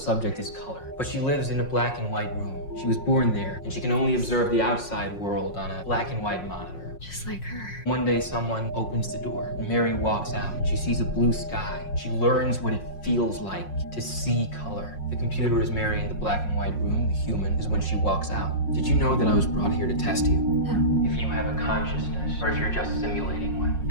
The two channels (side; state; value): right; late; 5.5 ms